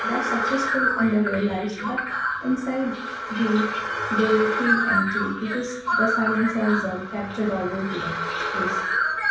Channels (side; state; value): both; identical; correlation 1.00